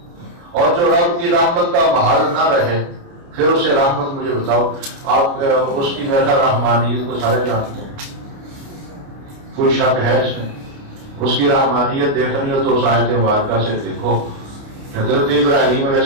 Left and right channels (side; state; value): left; late; 29 ms